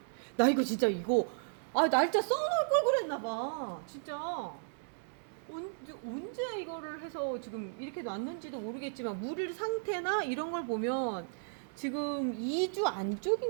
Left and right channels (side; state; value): left; silent; digital silence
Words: 나 이거 진짜 날짜 써놓을 걸 그랬나봐. 진짜. 언제 이거를 해서 지금 이렇게 놨는지도 모르겠지만, 물 상태나 이런 걸 보면 지금 2주